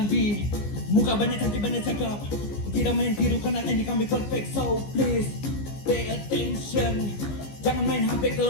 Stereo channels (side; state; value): right; late; 15 ms